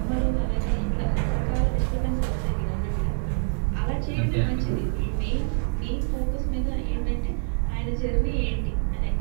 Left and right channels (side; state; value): left; silent; 61 dB below the other